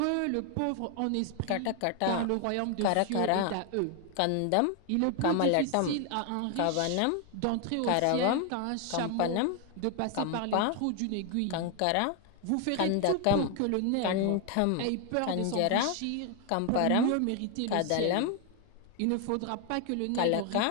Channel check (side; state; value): both; different; correlation 0.01